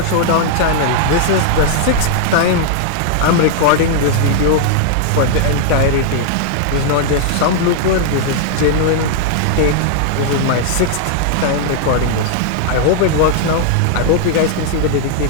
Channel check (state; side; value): different; both; correlation 0.00